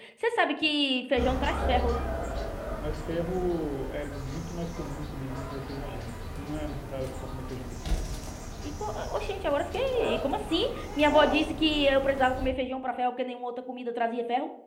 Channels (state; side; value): identical; both; correlation 1.00